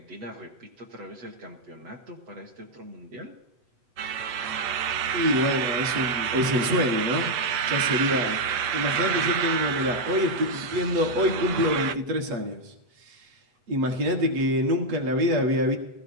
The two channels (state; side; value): late; left; 8.1 ms